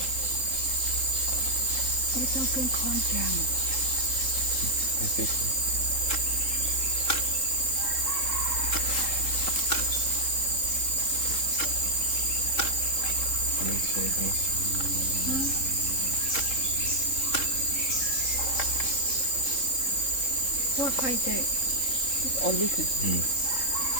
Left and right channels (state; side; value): late; right; 3.8 ms